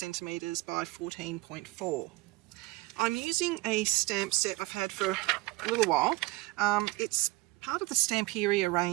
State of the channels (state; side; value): quieter; left; 21.2 dB